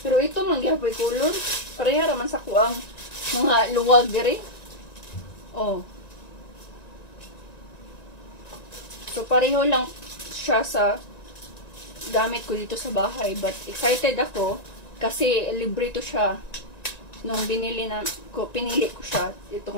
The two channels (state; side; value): late; right; 1.9 ms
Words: Pero ito mangyapoy kulon. Pareha raman sa kuang mga luwag diri. Oh. So pareho lang siya sa gamit ko dito sa bahay. But excited ako kasi libre to siya. Nung pinili ko siya. Ito